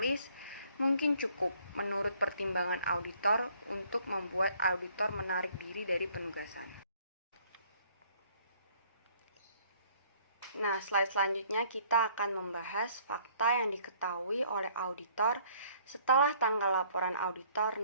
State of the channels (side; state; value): both; inverted; correlation -0.61